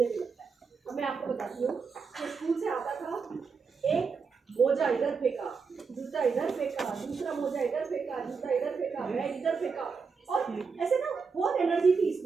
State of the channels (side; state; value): left; quieter; 5.3 dB